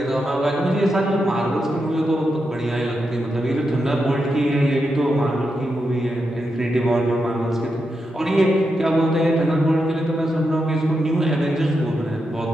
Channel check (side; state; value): both; normal; correlation 0.86